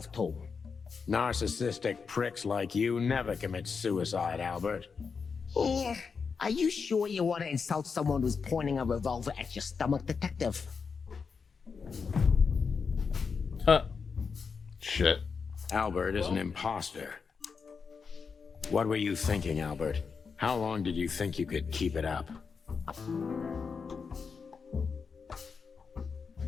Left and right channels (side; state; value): right; quieter; 5.5 dB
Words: too. Narcissistic pricks like you never commit suicide, Albert. Yeah. Are you sure you want to insult someone who's pointing a revolver at your stomach, Detective? Shit. Albert is an imposter. What were you thinking, Albert? How long did you think you could keep it up?